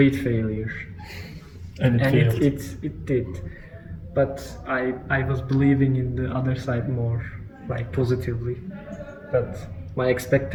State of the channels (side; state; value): both; identical; correlation 1.00